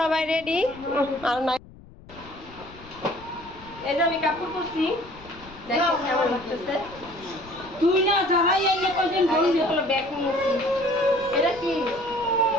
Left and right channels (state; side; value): noise; left; rumble, 20 dB below the sound